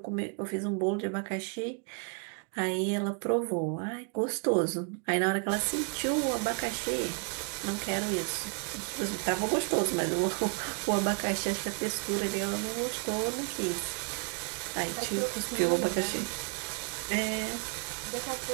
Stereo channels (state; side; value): quieter; left; 36.7 dB